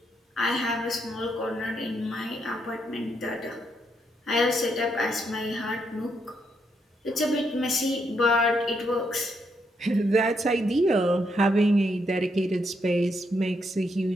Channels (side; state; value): both; normal; correlation 0.77